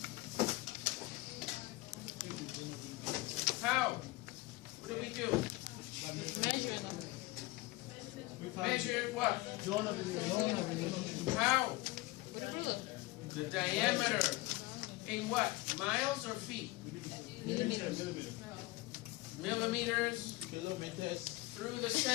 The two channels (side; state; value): right; quieter; 20.3 dB